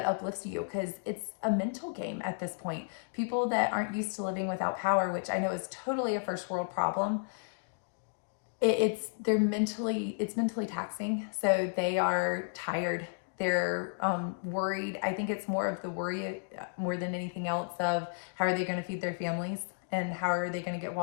you, because it's a mental game at this point. People that aren't used to living without power, which I know is totally a first world problem, it's mentally taxing. So they are tired. They're worried. I think it's more of the worry more than anything else of how are they going to feed their families, and how are they going to get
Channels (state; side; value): silent; right; digital silence